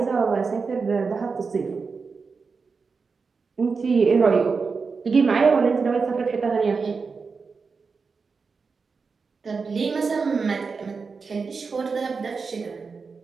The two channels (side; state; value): left; quieter; 4.9 dB